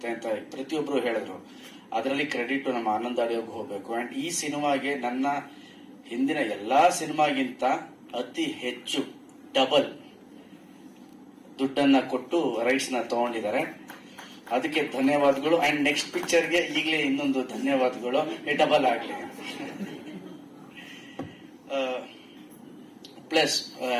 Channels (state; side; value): identical; both; correlation 1.00